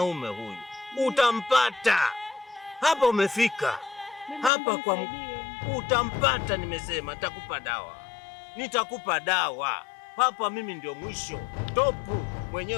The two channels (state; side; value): drops out; right; at 4.5 s